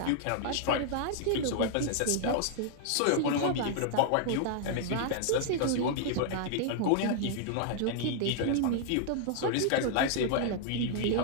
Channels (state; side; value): different; both; correlation -0.01